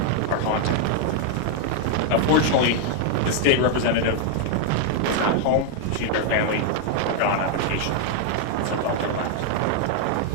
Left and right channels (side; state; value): both; different; correlation 0.00